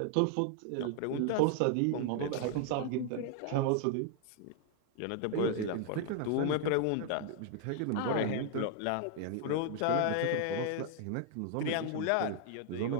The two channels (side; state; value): both; different; correlation 0.00